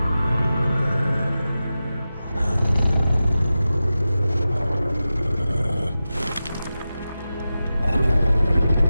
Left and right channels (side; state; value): both; inverted; correlation -0.93